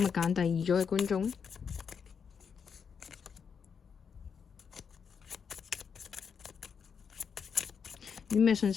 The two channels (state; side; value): quieter; right; 6.6 dB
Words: 日揀第二組嘅觀眾呢？有啲咩信